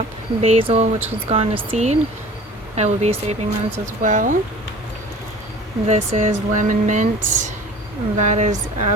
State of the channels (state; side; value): normal; both; correlation 0.44